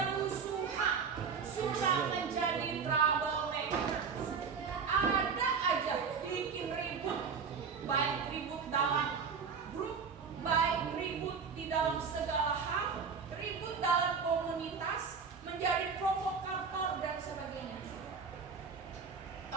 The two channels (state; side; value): quieter; left; 5.9 dB